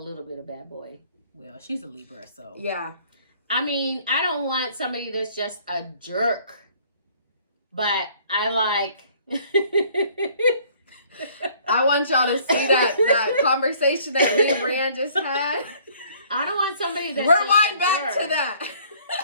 bit of bad boy. well, she's a Libra, so Yeah. I mean, I don't want somebody that's just a jerk, but I like. I want y'all to see that conversation that me and Brianne just had. I don't want somebody that's Rewind just a back jerk, to that.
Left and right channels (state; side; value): inverted; both; correlation -0.58